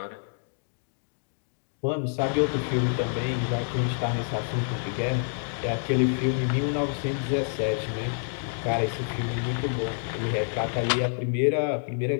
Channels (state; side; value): silent; right; digital silence